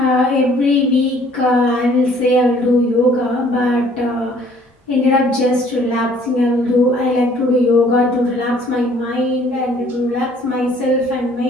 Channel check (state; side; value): normal; both; correlation 0.58